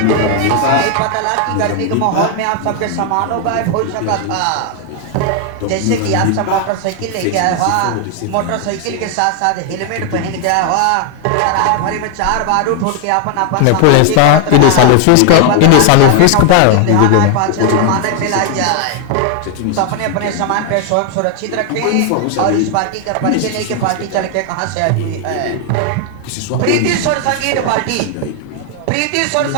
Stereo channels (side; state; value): both; different; correlation 0.00